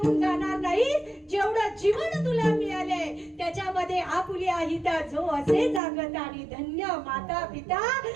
जाणार नाहीस. जेवढं जीवन तुला मिळाले त्याच्यामध्ये आपुली आहिता जो असे जागत आणि धन्य माता पिता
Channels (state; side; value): drops out; left; at 5.8 s